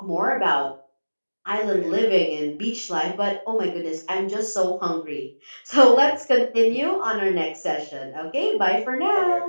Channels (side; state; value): both; inverted; correlation -1.00